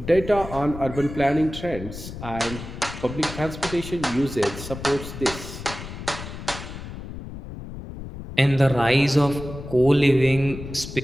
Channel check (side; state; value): left; noise; rumble, 11 dB below the sound